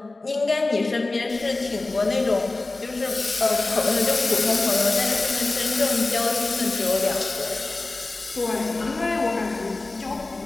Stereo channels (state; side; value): quieter; right; 3.2 dB